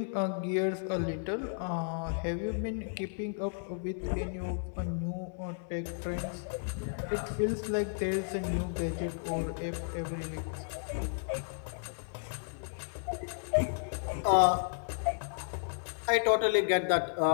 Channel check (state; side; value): silent; right; 56 dB below the other